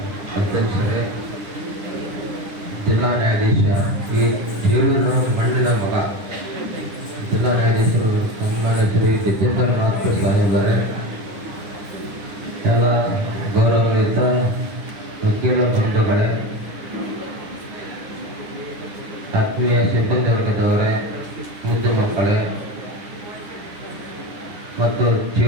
ಅಧ್ಯಕ್ಷರೇ, ಜಿಲ್ಲಾ ನ್ಯಾಯಾಧೀಶ ಈ ಜೀವನ ಮಣ್ಣಿನ ಮಗ ಜಿಲ್ಲಾ ನ್ಯಾಯಾಧೀಶರು ಸನ್ಮಾನ್ಯ ಶ್ರೀ ಗಜೇಂದ್ರನಾಥ್ ಸಾಹೇಬರೇ, ಎಲ್ಲ ಗೌರವಾನ್ವಿತ ವಕೀಲ ಬಂಧುಗಳೇ, ಆತ್ಮೀಯ ಸಿಬ್ಬಂದಿ ವರ್ಗದವರೇ, ಮುದ್ದು ಮಕ್ಕಳೇ ಮತ್ತು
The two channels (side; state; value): left; late; 9.9 ms